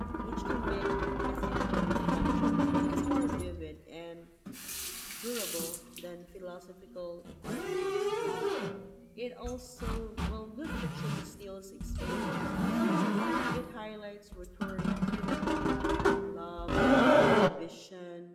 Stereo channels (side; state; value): both; identical; correlation 1.00